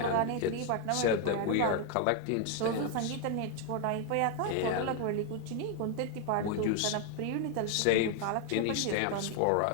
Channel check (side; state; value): both; different; correlation 0.01